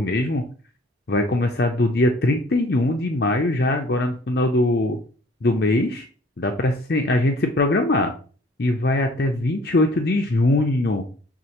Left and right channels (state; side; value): normal; both; correlation 0.54